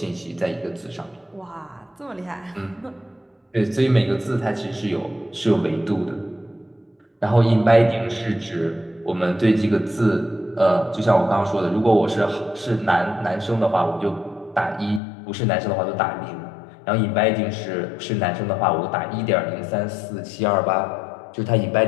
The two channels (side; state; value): right; drops out; at 15.0 s